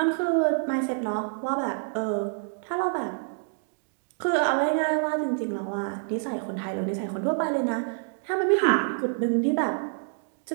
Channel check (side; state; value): left; silent; digital silence